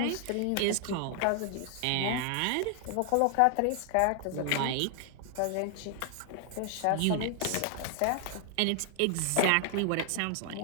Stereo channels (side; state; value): both; different; correlation 0.00